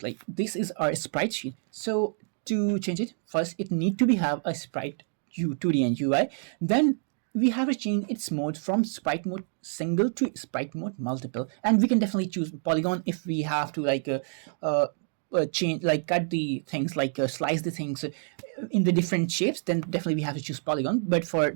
like this is our sprite sheet. So to change it, first it need to be have a sprite 2D and UI. Then we have to change its mode from sprite mode single to sprite mode multiple, and we can definitely choose polygon if we have to like change, like cut the things, like slice the things in the different shapes, then definitely we have to choose polygon. But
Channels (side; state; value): left; silent; 60 dB below the other